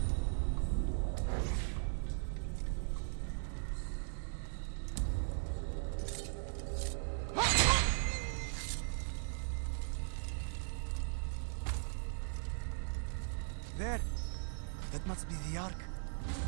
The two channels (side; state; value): left; silent; digital silence